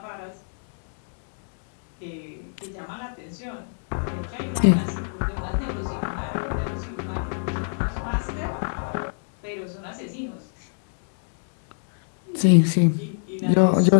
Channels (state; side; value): silent; right; digital silence